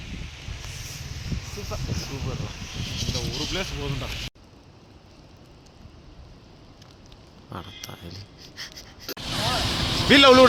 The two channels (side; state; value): both; identical; correlation 1.00